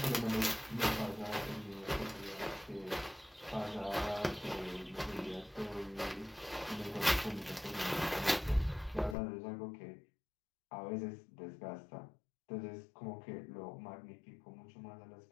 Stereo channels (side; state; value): right; drops out; at 9.2 s